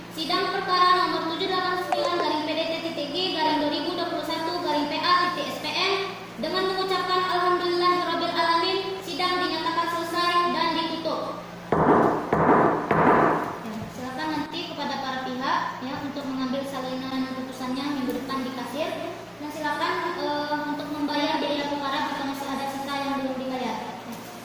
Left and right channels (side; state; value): both; identical; correlation 1.00